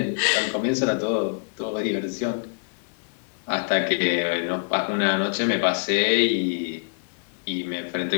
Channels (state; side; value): silent; right; digital silence